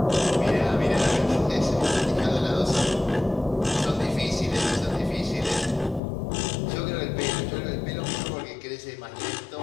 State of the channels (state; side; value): drops out; right; at 6.0 s